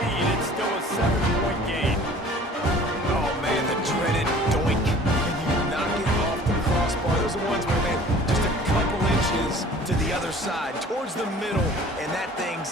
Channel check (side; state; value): both; normal; correlation 0.48